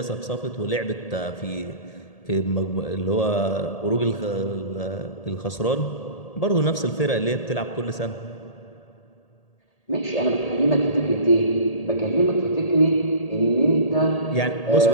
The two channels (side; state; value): right; late; 1.8 ms